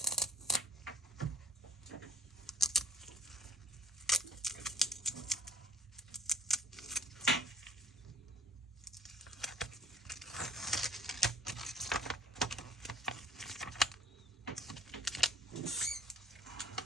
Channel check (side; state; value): both; normal; correlation 0.48